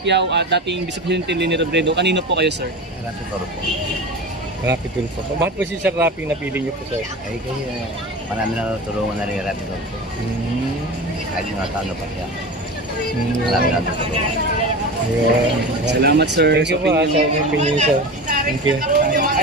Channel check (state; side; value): normal; both; correlation 0.29